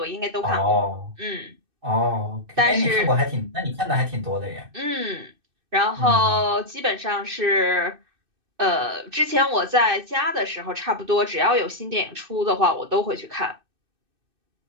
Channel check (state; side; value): late; left; 2.6 ms